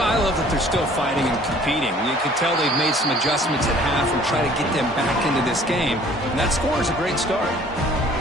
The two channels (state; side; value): normal; both; correlation 0.54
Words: I love that they're still fighting and competing. You can tell they've made some adjustments at half and try to get them back into this game. And that score is a great start.